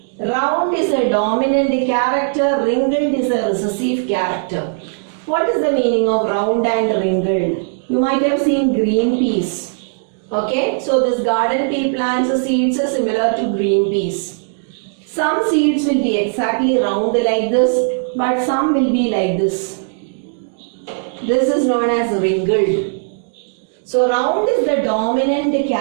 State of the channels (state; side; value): silent; left; digital silence